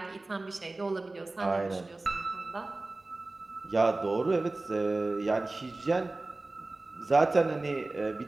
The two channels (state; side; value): quieter; left; 3.1 dB